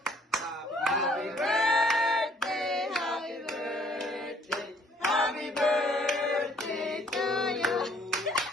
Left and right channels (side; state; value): both; normal; correlation 0.61